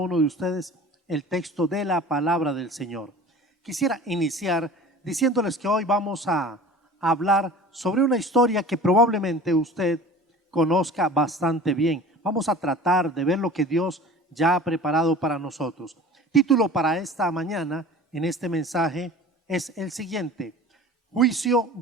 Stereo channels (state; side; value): normal; both; correlation 0.41